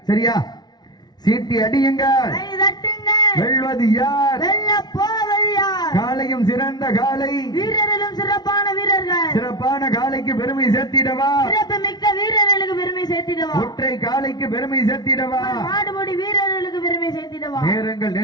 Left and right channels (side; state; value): right; late; 0.20 ms